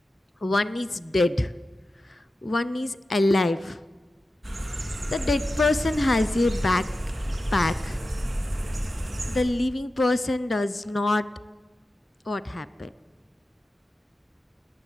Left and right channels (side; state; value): both; normal; correlation 0.93